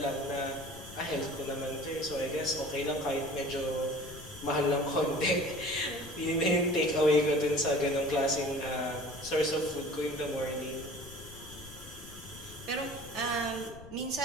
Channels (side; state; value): left; noise; rumble, 17 dB below the sound